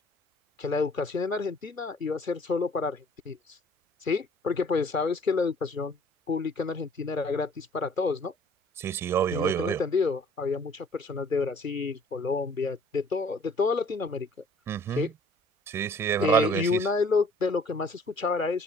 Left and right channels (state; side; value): normal; both; correlation 0.55